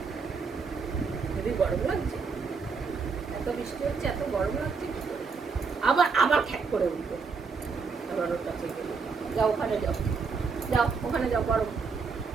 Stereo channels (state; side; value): quieter; left; 5.1 dB